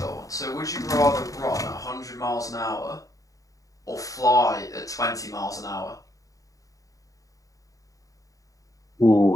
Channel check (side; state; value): right; late; 0.16 ms